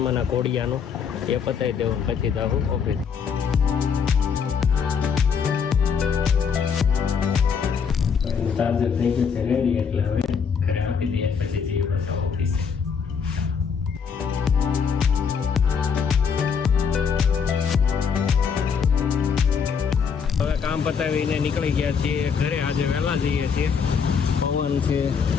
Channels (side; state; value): right; quieter; 6.4 dB